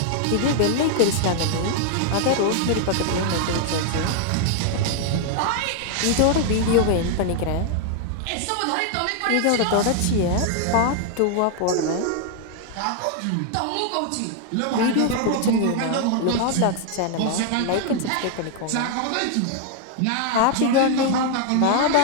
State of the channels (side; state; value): both; different; correlation 0.00